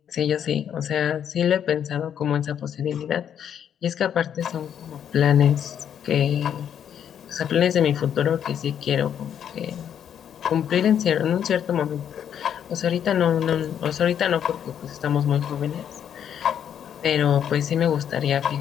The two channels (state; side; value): quieter; right; 9.0 dB